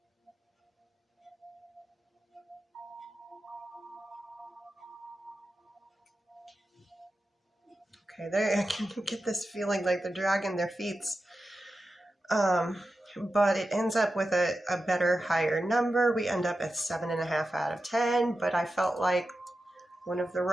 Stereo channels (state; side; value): normal; both; correlation 0.92